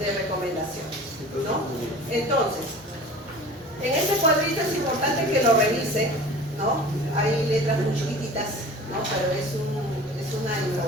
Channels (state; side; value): normal; both; correlation 0.41